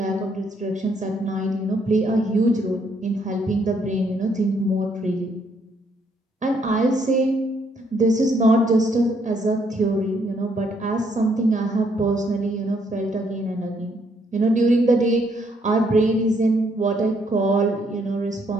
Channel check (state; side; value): normal; both; correlation 0.70